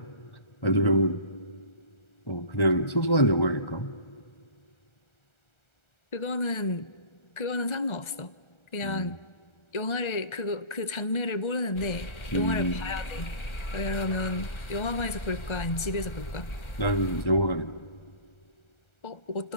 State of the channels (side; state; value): right; late; 1.3 ms